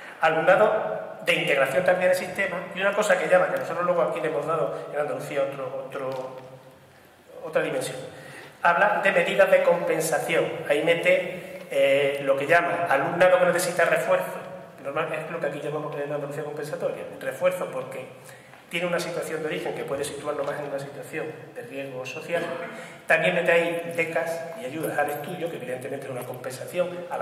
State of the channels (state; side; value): identical; both; correlation 1.00